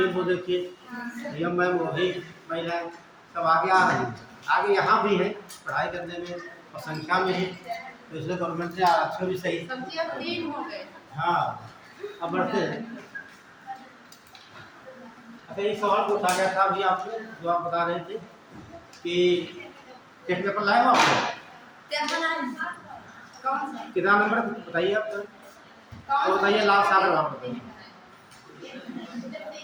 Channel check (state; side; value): identical; both; correlation 1.00